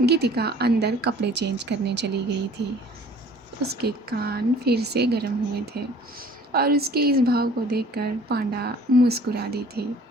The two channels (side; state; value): both; normal; correlation 0.51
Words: गीतिका अंदर कपड़े चेंज करने चली गई थी। उसके कान फिर से गर्म हुए थे और उसके इस भाव को देखकर पांडा मुस्कुरा दी थी।